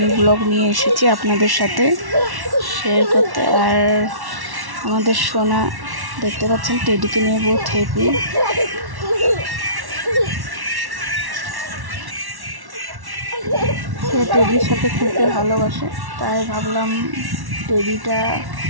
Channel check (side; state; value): left; late; 1.1 ms